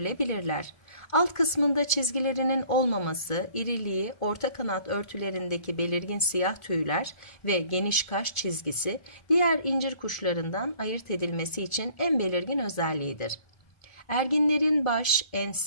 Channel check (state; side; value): late; right; 1.4 ms